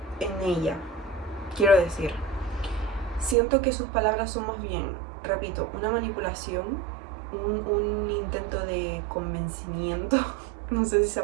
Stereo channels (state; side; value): drops out; left; at 3.4 s